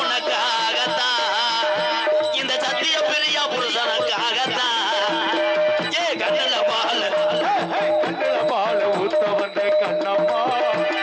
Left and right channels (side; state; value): both; identical; correlation 1.00